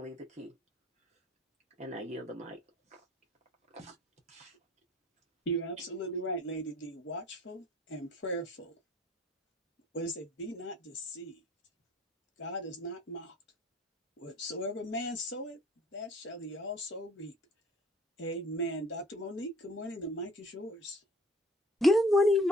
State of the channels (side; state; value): both; normal; correlation 0.54